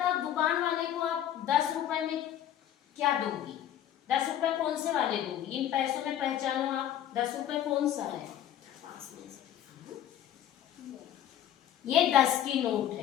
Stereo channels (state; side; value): quieter; right; 11.0 dB